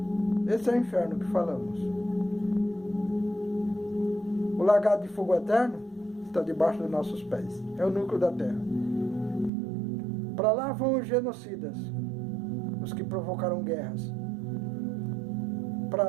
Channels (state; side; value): drops out; left; at 9.5 s